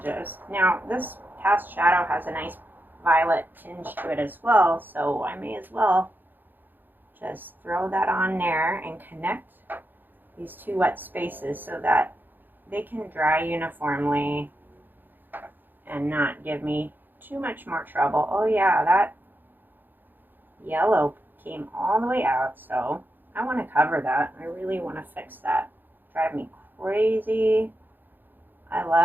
Now, this cast shadow has a nice violet tinge to it as well, so I may as well just throw that on there and connect these two wet spaces so that they can dry uniformly and not give me too much more trouble. Oh yeah, that yellow came all the way out, so I want to cover that. I really want to fix that. Drive me crazy. I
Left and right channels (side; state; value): left; late; 0.090 ms